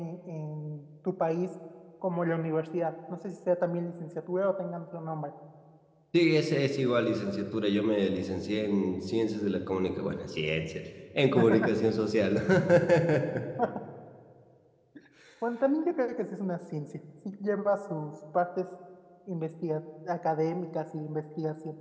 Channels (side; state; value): both; identical; correlation 1.00